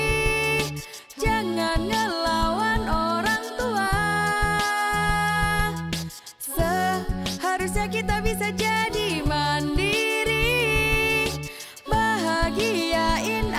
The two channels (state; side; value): identical; both; correlation 1.00